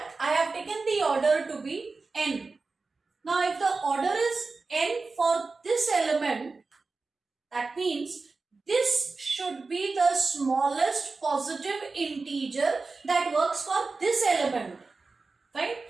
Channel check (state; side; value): quieter; left; 4.0 dB